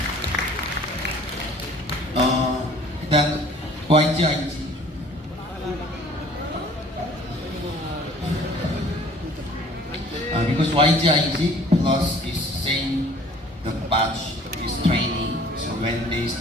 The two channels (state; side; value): normal; both; correlation 0.52